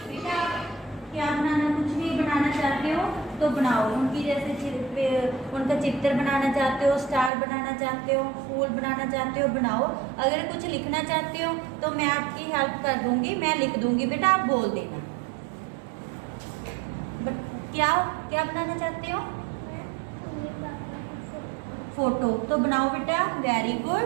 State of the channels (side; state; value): left; drops out; at 7.3 s